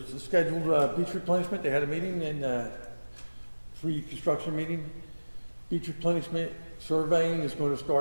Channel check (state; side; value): inverted; both; correlation -1.00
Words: a scheduled beach replenishment. They had a meeting and free construction meeting. Beach replenishment surveying is going to